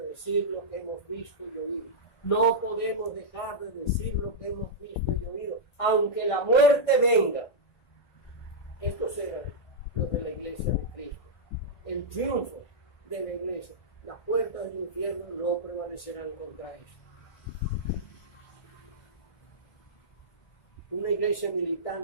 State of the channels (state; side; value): late; right; 1.6 ms